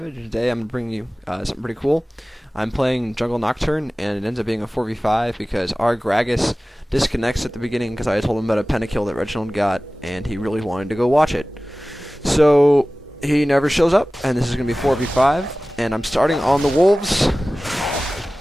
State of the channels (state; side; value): normal; both; correlation 0.97